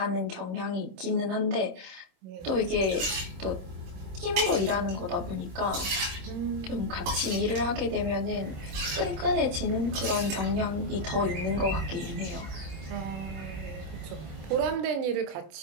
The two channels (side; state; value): left; late; 26 ms